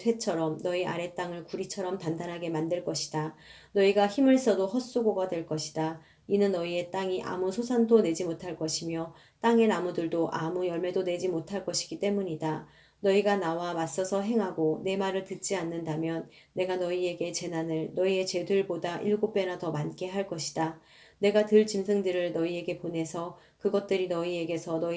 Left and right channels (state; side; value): identical; both; correlation 1.00